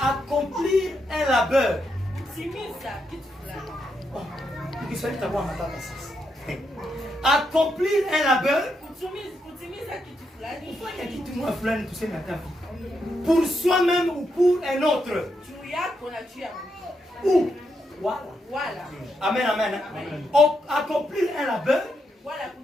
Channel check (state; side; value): normal; both; correlation 0.81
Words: un labeur. Accomplir un labeur pour soi-même ou pour un autre. Ou voilà. Amen, amen. Accomplir un labeur